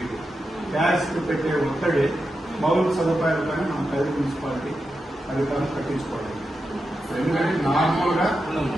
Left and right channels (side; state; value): both; normal; correlation 0.88